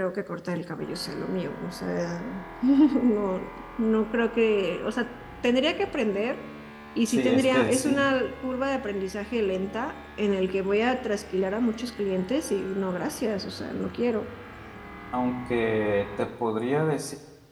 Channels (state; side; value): identical; both; correlation 1.00